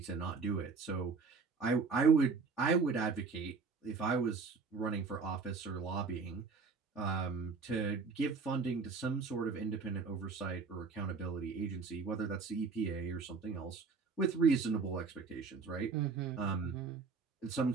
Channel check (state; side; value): quieter; left; 4.8 dB